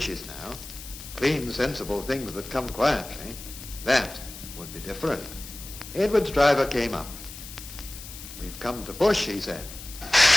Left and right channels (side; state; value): left; noise; hiss, 13 dB below the sound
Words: now, clean, sensible things that come quietly. That would be different." Edward's driver came up. "We've come to push," he said.